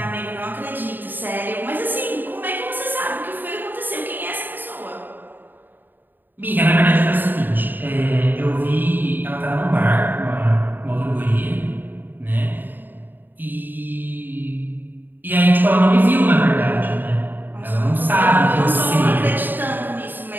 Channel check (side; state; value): left; late; 0.091 ms